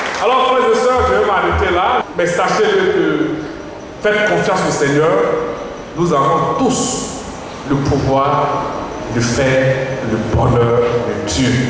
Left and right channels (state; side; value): identical; both; correlation 1.00